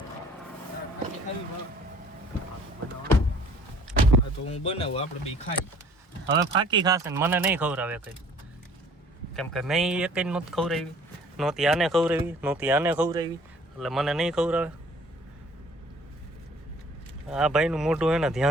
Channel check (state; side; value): normal; both; correlation 0.54